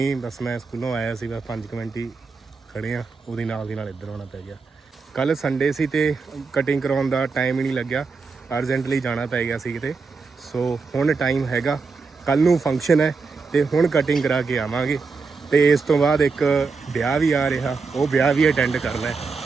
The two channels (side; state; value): left; quieter; 4.6 dB